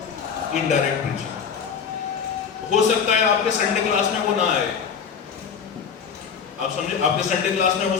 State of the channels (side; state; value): right; quieter; 6.7 dB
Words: इनडायरेक्ट प्रीचिंग। हो सकता है आपके संडे क्लास में वो ना आए, आप समझे, आपके संडे क्लास में